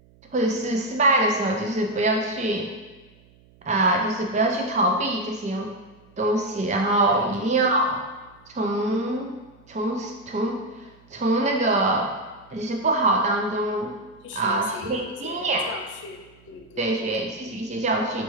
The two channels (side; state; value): right; noise; hum, 28 dB below the sound